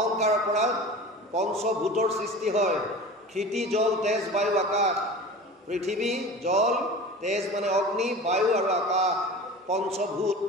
পৰা পঞ্চভূতৰ সৃষ্টি হয়। ক্ষিতি, জল, তেজ, বায়ু, আকাশ। পৃথিৱী, জল, তেজ মানে অগ্নি, বায়ু আৰু আকাশ, পঞ্চভূত।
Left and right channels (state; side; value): normal; both; correlation 0.36